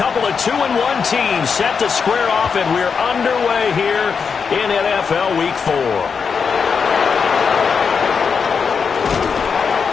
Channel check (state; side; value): quieter; right; 5.9 dB